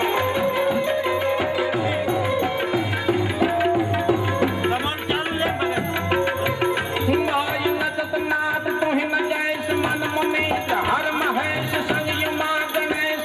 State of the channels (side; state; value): both; identical; correlation 1.00